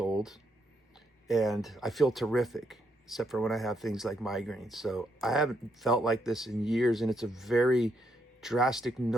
and I feel terrific, except for when I have things like migraines. So I haven't felt like this in years, and it's a very drastic,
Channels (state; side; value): normal; both; correlation 0.77